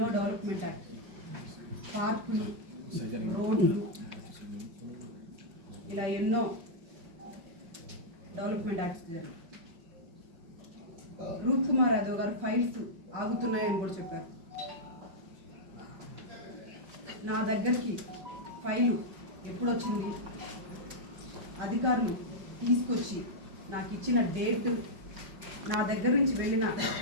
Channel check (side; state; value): left; late; 5.3 ms